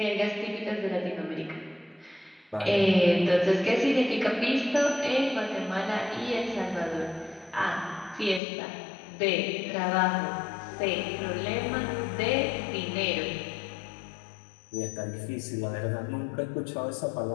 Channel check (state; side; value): drops out; right; at 8.4 s